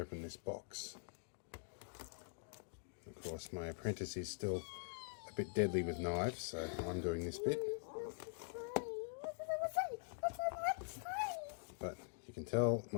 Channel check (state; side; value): silent; right; digital silence